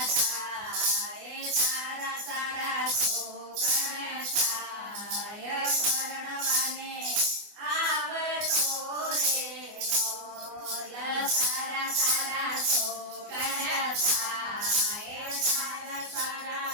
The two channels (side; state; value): left; late; 24 ms